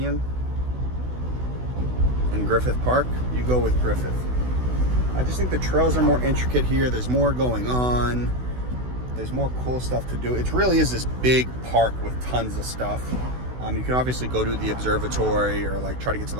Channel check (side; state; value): left; late; 16 ms